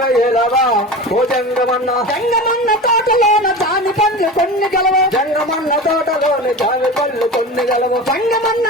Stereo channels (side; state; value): both; normal; correlation 0.30